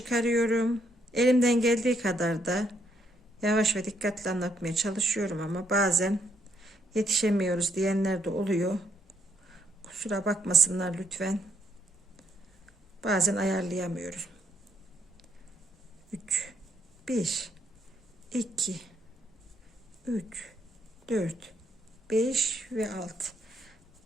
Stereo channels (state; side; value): normal; both; correlation 0.73